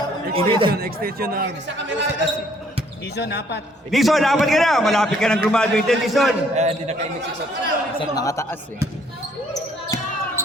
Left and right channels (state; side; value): normal; both; correlation 0.64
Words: Extension na. Dison, apat. Dison, dapat ka na. Malapit ka ng graduate, Dison. Hindi nakainig si Sir. Sir, nakataas eh.